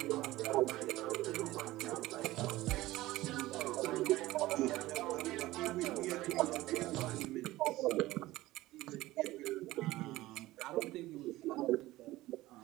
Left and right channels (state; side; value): quieter; left; 17.5 dB